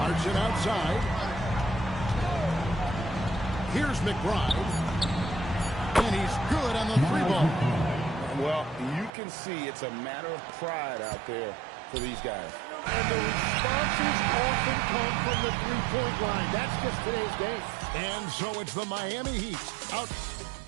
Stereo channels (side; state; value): left; drops out; at 9.1 s